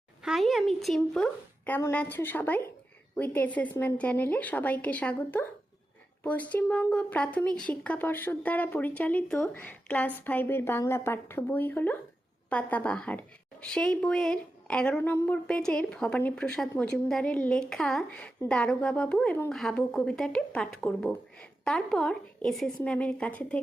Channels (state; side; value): normal; both; correlation 0.91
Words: High, আমি চিম্পু। কেমন আছো সবাই? উইথ অ্যাসেসমেন্ট চ্যানেলে সবাইকে স্বাগত। পশ্চিমবঙ্গ প্রাথমিক শিক্ষা পর্ষদ দ্বারা পরিচালিত ক্লাস 5-এর বাংলা পাঠ্য বই হলো পাতাবাহার। সেই বইয়ের 11 নম্বর পেজের ভবানীপ্রসাদ মজুমদারের লেখা দারোগাবাবু এবং হাবু কবিতাটি পাঠ করব। তারপর এসএস ম্যামের কাছে